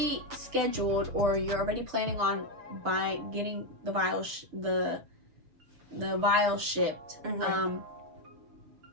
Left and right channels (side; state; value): left; late; 6.6 ms